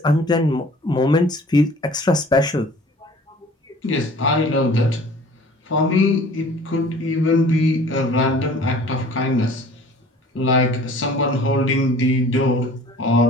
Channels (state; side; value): normal; both; correlation 0.49